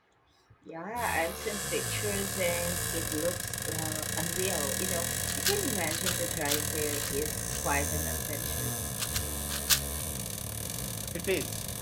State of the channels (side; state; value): both; identical; correlation 1.00